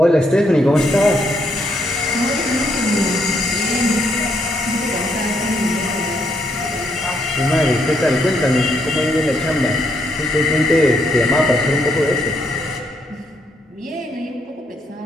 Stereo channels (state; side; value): normal; both; correlation 0.74